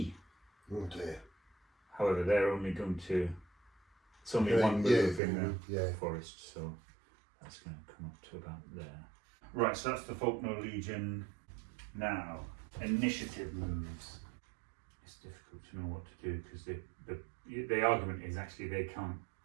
Oh dear. However, they're only going to... It's only 1 move in the forest, so that's going to come up to about there. Right, so that's the Faulkner Legion. Now, initiative moves. It's difficult to know what to do because the argument is actually they can't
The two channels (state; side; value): drops out; left; at 5.2 s